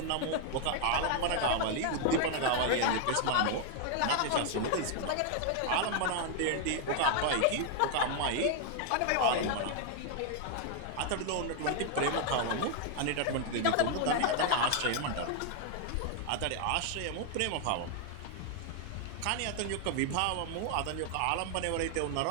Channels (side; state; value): both; different; correlation 0.00